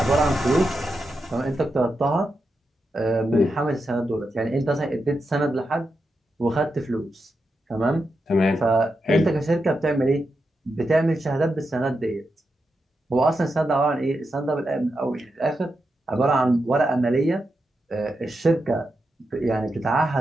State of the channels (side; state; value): both; normal; correlation 0.87